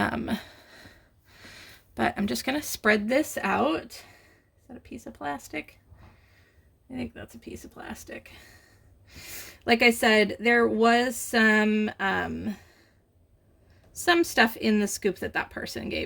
I'm just gonna spread this out. Is that a piece of plastic? I think that's a piece of plastic. Like I said, there was some stuff in the scoop that person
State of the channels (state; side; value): identical; both; correlation 1.00